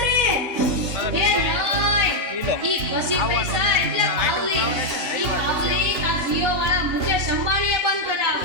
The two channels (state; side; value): late; left; 2.8 ms